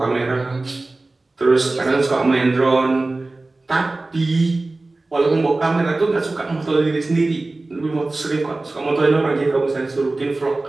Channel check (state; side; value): quieter; left; 3.1 dB